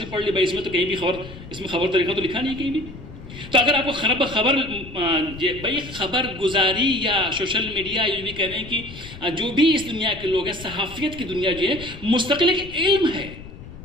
پڑھ لی. بھائی اس میں تو کہیں بھی اس میں خبر طریقہ تو لکھا نہیں کہیں بھی. تو اگر آپ کو خبر گزاری یا سوشل میڈیا یہ بھی کہہ رہے ہیں کہ جو بھی اس دنیا کے لوگ ہیں، صحافیت کی دنیا جو ہے مستقل ایک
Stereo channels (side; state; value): left; noise; rumble, 14 dB below the sound